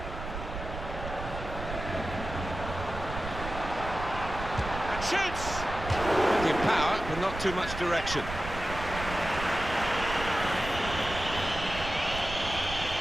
And shoots! Plenty of power, but not too much direction.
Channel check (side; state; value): right; noise; rumble, 8 dB below the sound